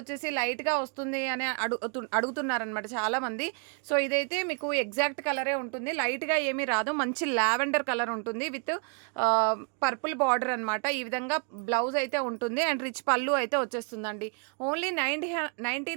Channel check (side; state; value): left; quieter; 38.7 dB